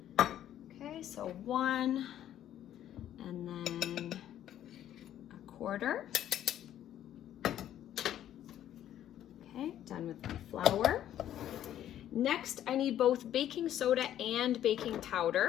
Okay, so 1 and then 1/4. Okay, done with my flour. Next, I need both baking soda and baking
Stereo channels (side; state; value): right; quieter; 11.4 dB